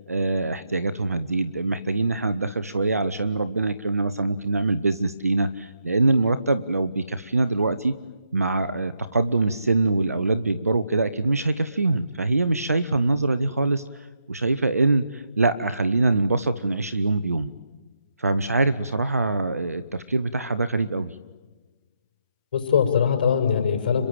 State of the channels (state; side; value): inverted; both; correlation -0.80